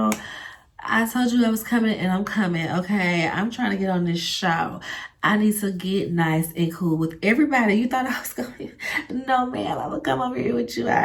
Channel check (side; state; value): both; identical; correlation 1.00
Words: I told you I was coming and I'm coming, okay? I'm trying to get on this show. I need to get nice and cool with everybody. You thought I was going to... No, man, I'm going to come over here with you.